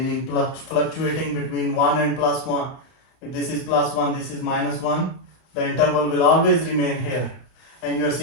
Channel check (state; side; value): late; right; 31 ms